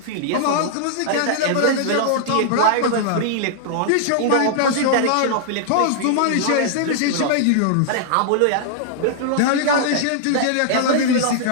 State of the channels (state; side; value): different; both; correlation -0.01